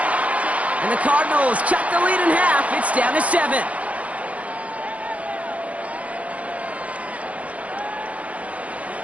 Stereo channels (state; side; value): late; left; 0.066 ms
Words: And the Cardinals cut the lead in half. It's down to 7.